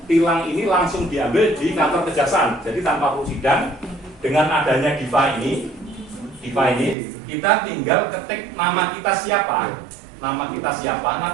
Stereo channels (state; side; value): drops out; left; at 7.0 s